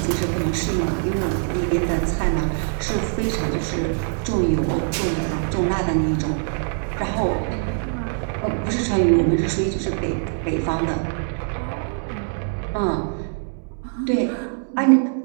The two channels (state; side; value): silent; left; digital silence